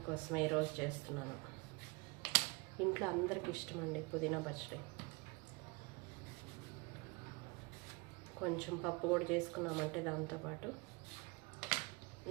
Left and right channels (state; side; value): quieter; left; 27.2 dB